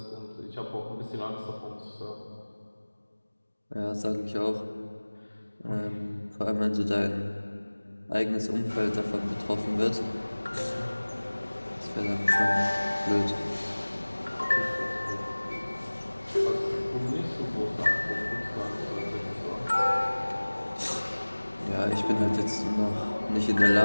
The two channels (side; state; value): both; inverted; correlation -1.00